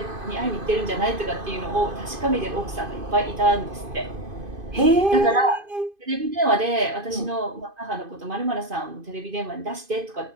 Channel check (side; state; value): left; late; 2.5 ms